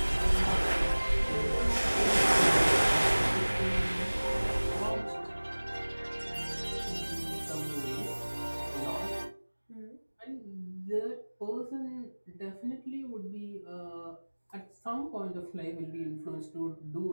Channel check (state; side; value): inverted; both; correlation -1.00